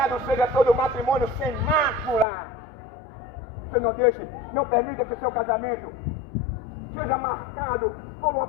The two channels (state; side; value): drops out; right; at 2.2 s